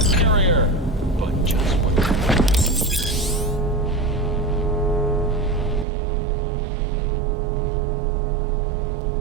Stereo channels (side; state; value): left; drops out; at 5.9 s